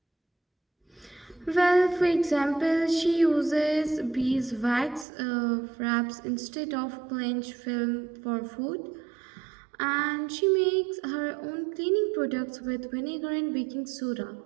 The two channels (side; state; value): left; drops out; at 5.1 s